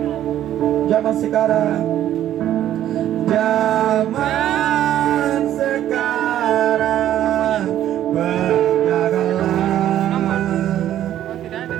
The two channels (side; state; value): left; quieter; 11.8 dB